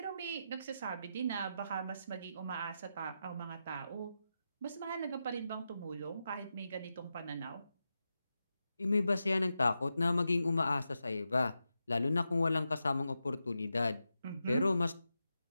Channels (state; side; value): inverted; both; correlation -0.88